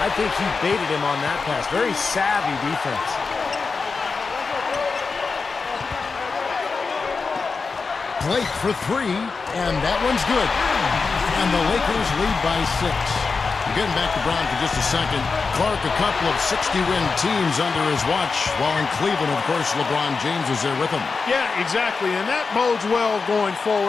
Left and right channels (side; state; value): right; quieter; 4.6 dB